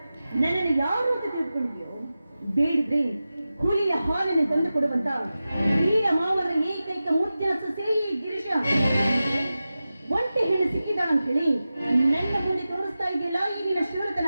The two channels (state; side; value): inverted; both; correlation -0.94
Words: ನನ್ನನ್ನು ಯಾರು ಅಂತ ತಿಳ್ಕೊಂಡಿದ್ಯೋ? ಬೇಡಿದ್ರೆ ಹುಲಿಯ ಹಾಲನ್ನು ತಂದು ಕೊಡುವಂತ ವೀರ ಮಾವರ ಏಕೈಕ ಮುದ್ದಿನ ಸೊಸೆ ಗಿರೀಶ ಒಂಟೆ ಹೆಣ್ಣು ಸಿಕ್ಕಿದಾಳ ಅಂತ ಹೇಳಿ ನನ್ನ ಮುಂದೆ ತೋರಿಸ್ತಾ ಇದೆಯಲ್ಲ ಈಗಿನ